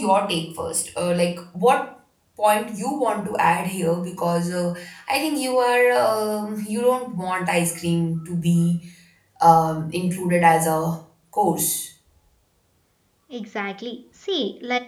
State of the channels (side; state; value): both; identical; correlation 1.00